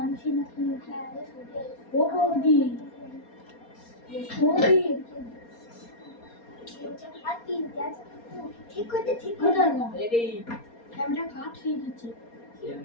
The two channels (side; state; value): right; late; 4.3 ms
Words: নাকি ও বৌদি বৌদি ঠিক করতে ঠিক করে না রেডি ক্যামেরা কাট হয়ে গেছে